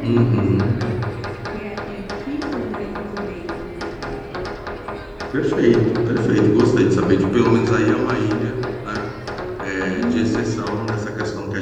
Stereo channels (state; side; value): identical; both; correlation 1.00